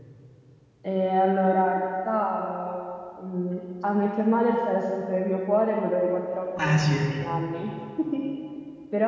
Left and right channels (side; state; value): both; identical; correlation 1.00